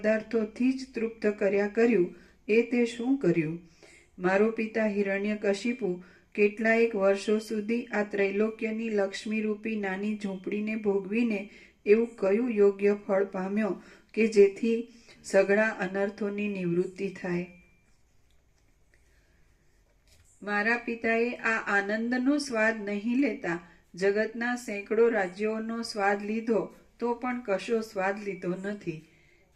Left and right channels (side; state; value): both; identical; correlation 1.00